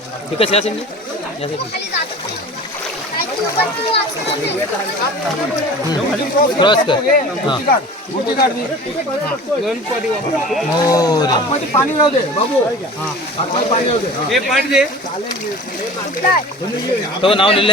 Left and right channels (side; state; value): both; normal; correlation 0.40